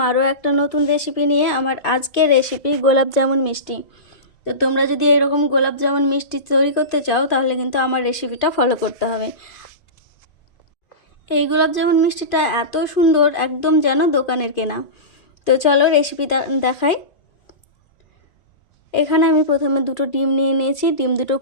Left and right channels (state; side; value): late; right; 2.4 ms